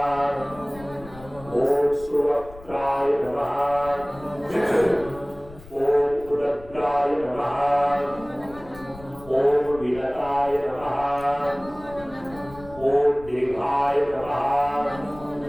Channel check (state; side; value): noise; left; rumble, 19 dB below the sound